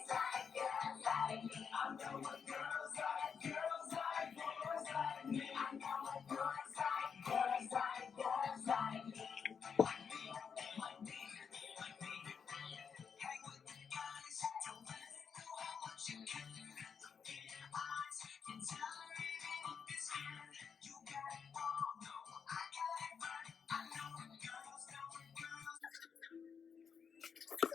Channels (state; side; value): quieter; right; 6.5 dB